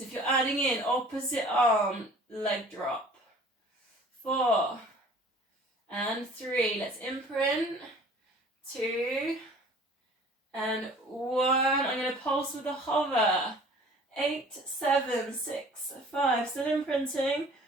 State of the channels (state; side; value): normal; both; correlation 0.49